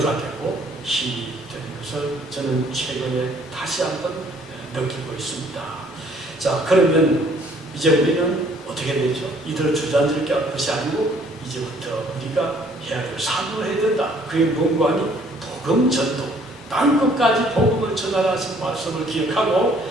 되고 힘이 되는 것을 저는 최근에 다시 한번 느끼고 있습니다. 자, 그러면 이제 우리는 어떻게 되죠? 이들을 주저앉을 것이 아니고 이제부터 우리가 해야 될 사명을 해야 된다. 그게 뭔가 하니 복음 전도, 땅끝까지 복음을 전하신 말씀을 기억하고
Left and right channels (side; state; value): both; normal; correlation 0.61